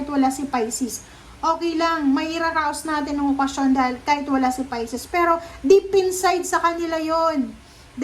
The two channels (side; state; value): both; identical; correlation 1.00